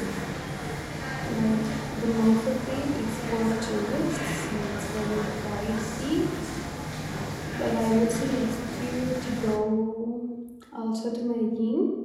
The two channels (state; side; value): identical; both; correlation 1.00